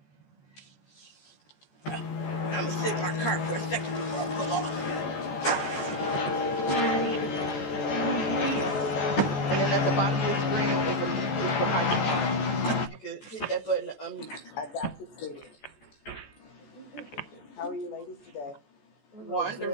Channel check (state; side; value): late; right; 14 ms